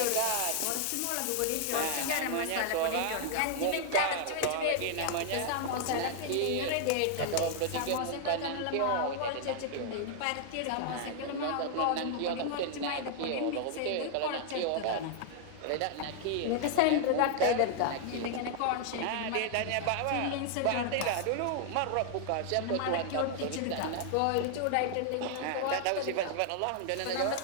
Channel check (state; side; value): different; both; correlation 0.00